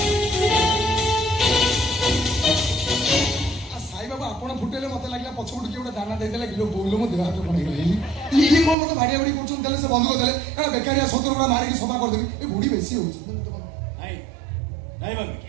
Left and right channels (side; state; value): left; drops out; at 8.8 s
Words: ଆପଣ ଫୁଟେଇଲେ ମତେ ଲାଗିଲା ପଛପଟୁ କିଏ ଗୋଟେ ଦାନା ଦେଇଦେଲା କିଲୋ ବୋଇଲେ ମୋ ଦେହ ହାତ କଣ ହେଇଗଲା। ଇଏ କଣ ମତେ ଭାଡିଆ ଭାଡି କରୁଛନ୍ତି? ତାହେଲେ ସେ ବନ୍ଧୁକ ଦେଲେ ଏଟା ବେକାରିଆ ସତର ଗୁଡା ମାରିକି ସଫା କରିଦେବି। ଏ ବୁଢୀ ବେଶୀ ହଉଛି। ନାଇଁ ନାଇଁ